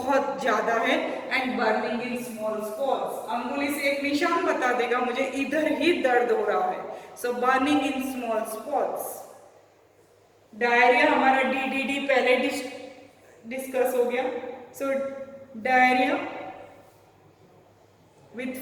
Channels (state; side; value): identical; both; correlation 1.00